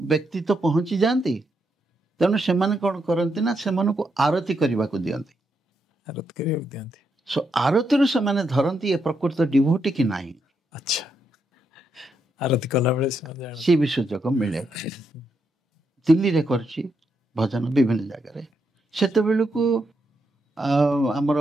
ବ୍ୟକ୍ତି ତ ପହଞ୍ଚି ଯାଆନ୍ତି। ତେଣୁ ସେମାନେ କ'ଣ କରନ୍ତି ନା ସେମାନଙ୍କୁ ଆରତି କରିବାକୁ ଦିଅନ୍ତି। ଆରତିରୁ ସେମାନେ ଧରନ୍ତି ଏ ପ୍ରକୃତ ଡିଭୋଟି କି ନାହିଁ। ଆଚ୍ଛା। ଆରତି କଲାବେଳେ ସେ ବି ସୁଯୋଗ ମିଳେ। ଦିଲ୍ଲୀରେ କରିଛି ଭଜନ ବିଭିନ୍ନ ଜାଗାରେ। ସେତେବେଳକୁ ଆମର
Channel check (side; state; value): both; normal; correlation 0.80